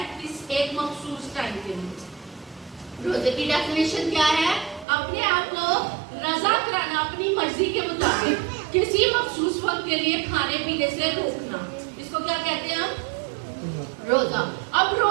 इस एक मखसूस टाइम के लिए रोजे की डेफिनेशन क्या है अपने आप को रजा कराना अपनी मर्जी के मुताबिक किसी मखसूस वक्त के लिए खाने पीने से रोकना इसको क्या कहते हैं हम रोजा अब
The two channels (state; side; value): drops out; left; at 4.9 s